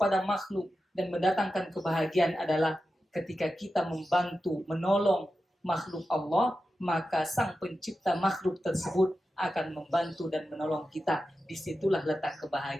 makhluk dan mendatangkan kebahagiaan adalah ketika kita membantu, menolong makhluk Allah, maka sang pencipta makhluk tersebut akan membantu dan menolong kita. Disitulah letak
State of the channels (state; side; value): normal; both; correlation 0.91